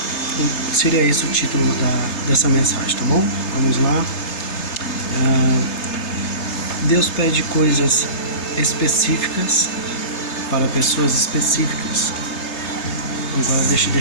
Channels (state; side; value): late; right; 3.3 ms